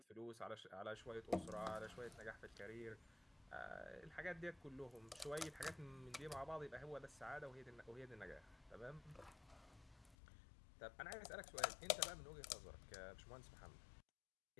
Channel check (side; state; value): right; drops out; at 10.2 s